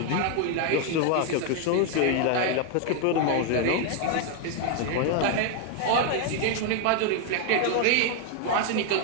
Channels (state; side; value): different; both; correlation 0.01